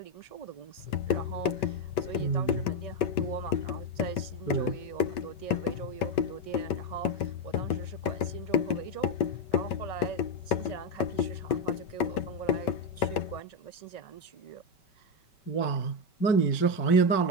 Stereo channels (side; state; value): right; late; 5.2 ms